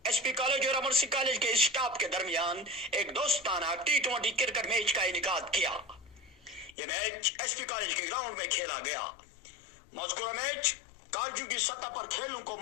एसपी कॉलेज और अमर सिंह कॉलेज के स्टाफ के दरमियान एक दोस्ताना T20 क्रिकेट मैच का इनेकाद किया। यह मैच एसपी कॉलेज के ग्राउंड में खेला गया। मज़कूरा मैच कॉलेजों की सतह पर खेलों को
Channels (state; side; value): drops out; right; at 6.8 s